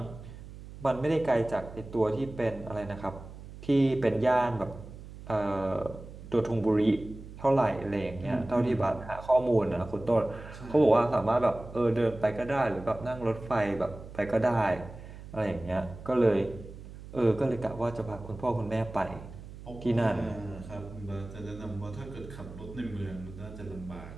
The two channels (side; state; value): right; noise; hum, 14 dB below the sound